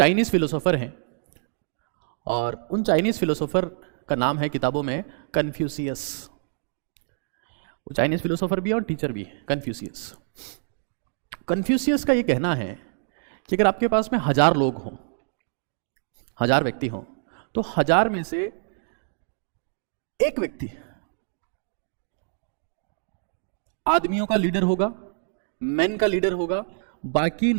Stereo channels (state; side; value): silent; left; digital silence